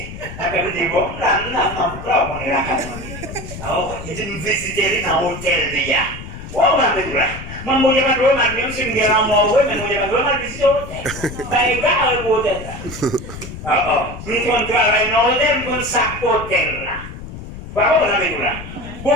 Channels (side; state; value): left; noise; rumble, 11 dB below the sound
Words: dis, bon, là, on est là, alors, il dit, nous visiter dans l'hôtel, les gars. Oh, on va mettre là. Je ne vais pas même si je suis en mort, mais je ne vais pas visiter l'hôtel. Ben, il va à l'hôtel là. Nous travaillons dans l'hôtel, nous sommes hôtel là. Voilà, on va mettre là.